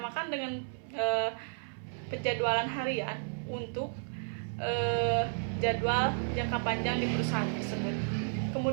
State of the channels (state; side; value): silent; left; 56 dB below the other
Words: dengan penjadwalan harian untuk jadwal jangka panjang di perusahaan tersebut.